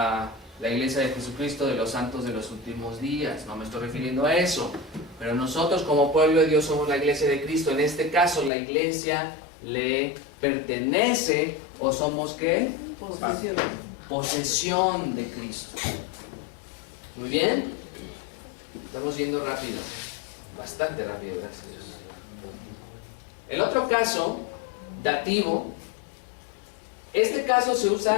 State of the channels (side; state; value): right; drops out; at 8.5 s